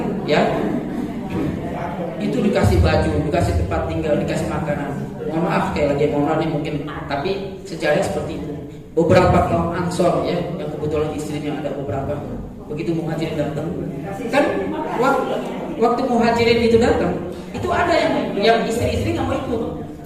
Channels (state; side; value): identical; both; correlation 1.00